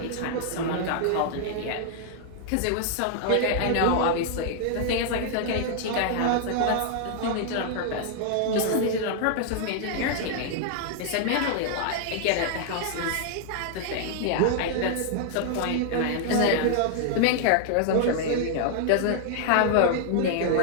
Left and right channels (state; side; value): different; both; correlation 0.00